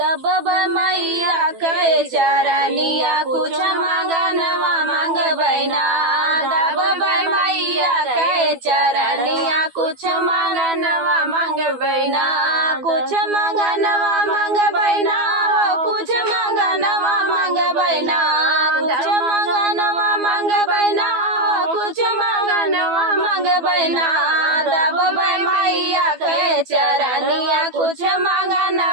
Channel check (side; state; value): left; late; 12 ms